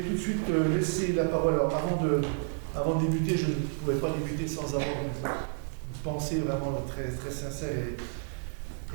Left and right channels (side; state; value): left; silent; 58 dB below the other